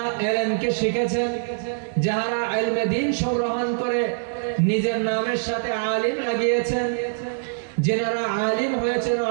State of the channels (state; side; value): silent; left; digital silence